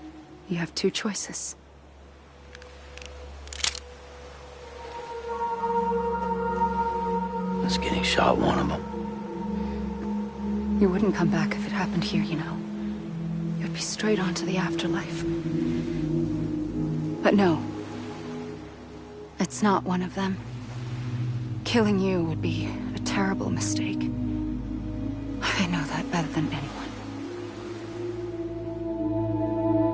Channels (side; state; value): both; identical; correlation 1.00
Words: you have two choices. Was getting shot one of them. You wouldn't come back if it happened here, you know. You'd be straight on to the afterlife. But no. It's not one of them. Killing you would be a terrible mistake. I know that better than anyone.